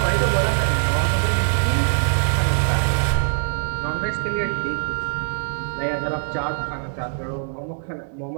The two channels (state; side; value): silent; left; digital silence